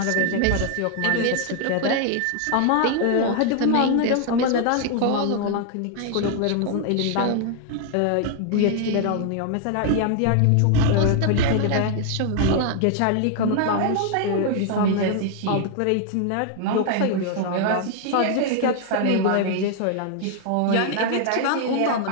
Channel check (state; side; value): different; both; correlation 0.00